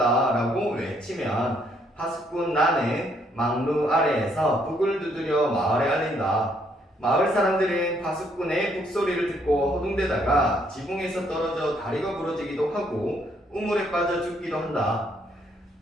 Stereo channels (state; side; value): normal; both; correlation 0.70